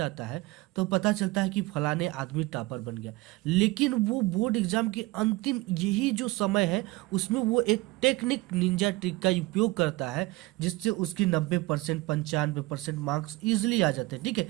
है तो पता चलता है कि फलाने आदमी टॉपर बन गया। लेकिन वो बोर्ड एग्जाम के अंतिम यही जो समय है उसमें वो एक टेक्निक निंजा ट्रिक का उपयोग करता है जिससे उसकी 90% 95% मार्क्स ईजिली आ जाते हैं। ठीक है,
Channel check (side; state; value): left; quieter; 21.1 dB